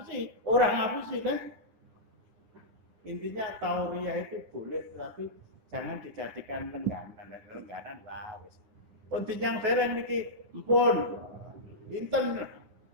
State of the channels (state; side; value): late; left; 9.9 ms